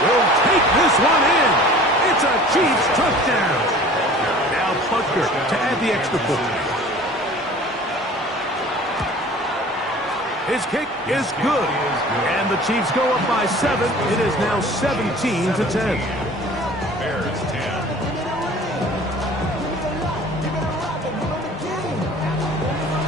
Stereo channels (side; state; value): both; normal; correlation 0.45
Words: will take this one in. It's a Chiefs touchdown. Now Butker to add the extra point. His kick is good. And the Chiefs go up by 7. It is now 17-10. Bears 10.